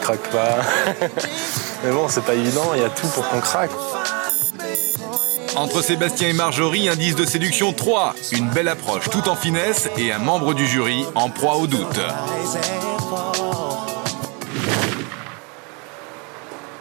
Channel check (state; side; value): quieter; left; 32.2 dB